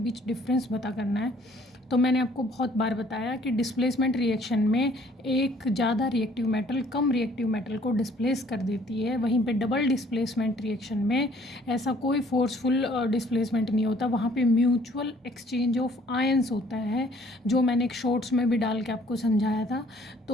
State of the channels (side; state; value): both; normal; correlation 0.59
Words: डिफरेंस पता करना है। तो मैंने आपको बहुत बार बताया कि डिस्प्लेसमेंट रिएक्शन में एक ज़्यादा रिएक्टिव मेटल कम रिएक्टिव मेटल को डिस्प्लेस कर देती है, वहीं पे डबल डिस्प्लेसमेंट रिएक्शन में ऐसा कोई फोर्सफुल डिस्प्लेसमेंट नहीं होता, वहाँ पे म्यूचुअल एक्सचेंज ऑफ आयंस होता है, जो मैंने एक शॉर्ट्स में भी डाल के आपको समझाया था।